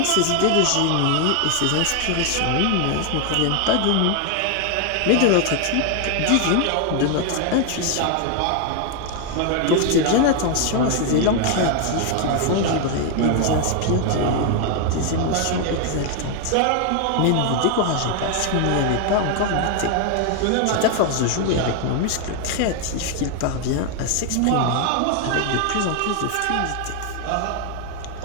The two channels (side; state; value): both; different; correlation 0.00